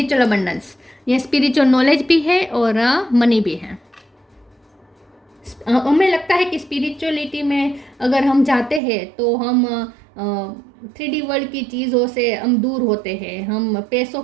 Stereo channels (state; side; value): drops out; left; at 8.8 s